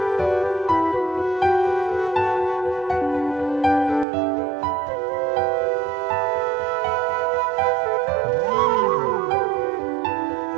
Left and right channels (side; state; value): left; drops out; at 4.0 s